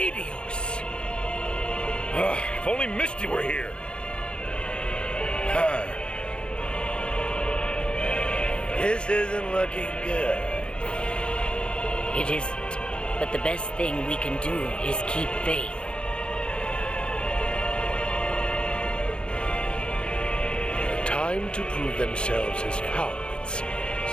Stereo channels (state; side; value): late; right; 0.054 ms